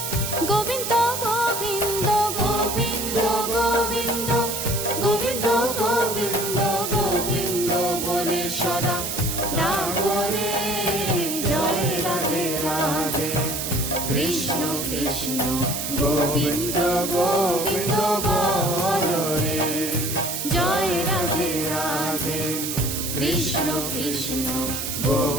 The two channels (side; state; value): right; noise; hiss, 4 dB below the sound